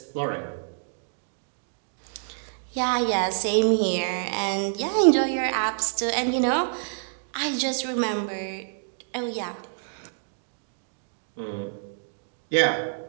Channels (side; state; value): left; silent; digital silence